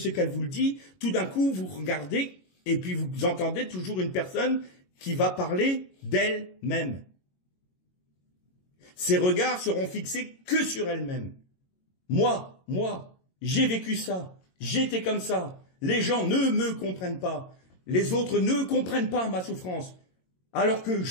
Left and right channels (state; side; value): late; right; 22 ms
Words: qu'elle vous dit, tout d'un coup, vous regardez et puis vous entendez toujours une personne qui va parler d'elle-même. Ses regards seront fixés que sur elle-même. Moi, j'ai vécu ça, j'étais comme ça. Les gens ne me comprennent pas. Les autres ne comprennent pas ma souffrance. Alors que